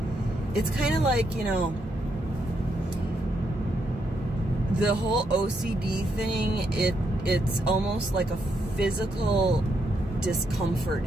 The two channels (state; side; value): normal; both; correlation 0.78